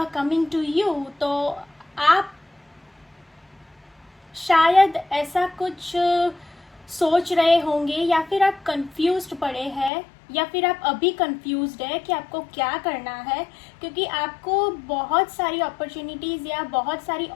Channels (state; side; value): drops out; right; at 9.9 s